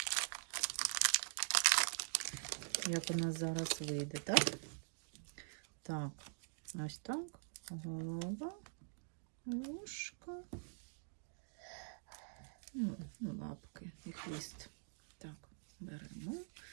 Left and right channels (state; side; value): silent; left; digital silence